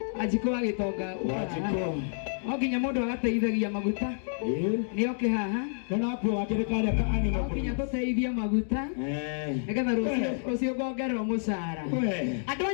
ajiko agitonga Wajiko. Oginya mundu agateithagia maguta ni oke haha Kana hapo wakirekale ka anima. Oginya tuteithia maguta nigetha rucio ngongerwo mucara andu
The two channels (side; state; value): right; silent; digital silence